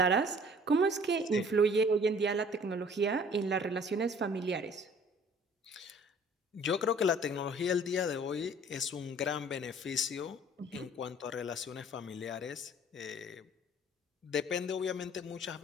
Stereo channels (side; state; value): both; normal; correlation 0.52